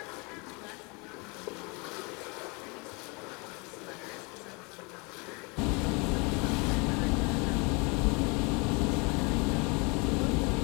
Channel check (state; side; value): quieter; right; 30.0 dB